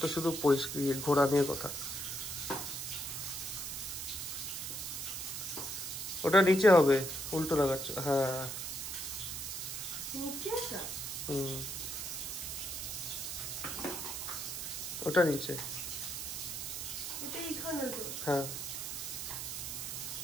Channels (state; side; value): noise; right; hiss, 5 dB below the sound